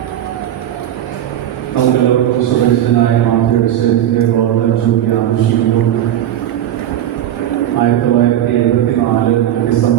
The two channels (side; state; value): left; quieter; 11.5 dB